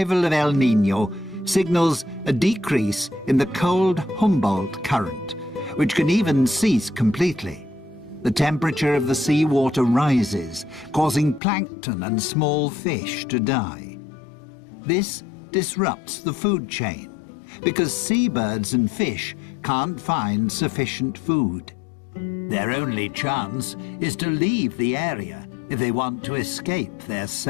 of El Niño signals a decrease in the cold Humboldt current, which can even cease completely. The temperature of the seawater rises, causing plankton and small fish to die. This disrupts the food chain, because seabirds and fish can't find sufficient food. Their only chance is to leave the area if they want to escape their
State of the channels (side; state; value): right; drops out; at 11.4 s